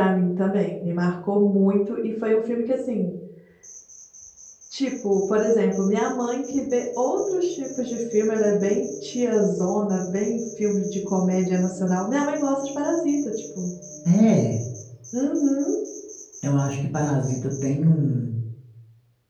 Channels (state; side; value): identical; both; correlation 1.00